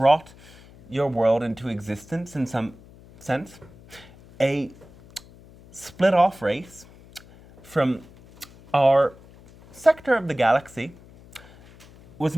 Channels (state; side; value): noise; left; hum, 23 dB below the sound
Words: your world into existence in some sense. A split-off race from our sector of the galaxy was